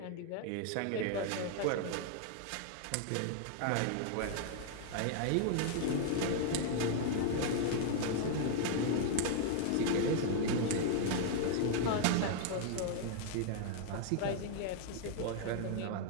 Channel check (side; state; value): both; different; correlation -0.01